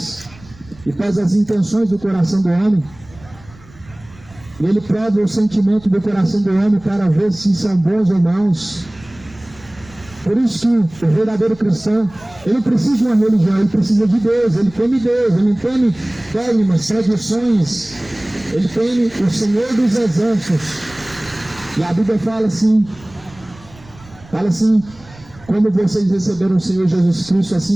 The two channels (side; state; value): right; noise; rumble, 23 dB below the sound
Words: e pesa as intenções do coração do homem. E ele prova o sentimento do coração do homem para ver se são bons ou maus. Por isso que o verdadeiro cristão, ele não precisa de uma religião, ele precisa de Deus, ele teme Deus, ele não teme dogmas, tradições, ele teme o Senhor dos Exércitos. E a Bíblia fala assim, como vocês receberam o Senhor Jesus Cristo,